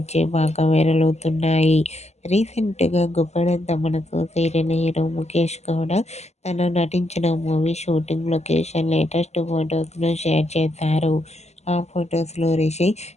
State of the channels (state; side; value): late; right; 0.32 ms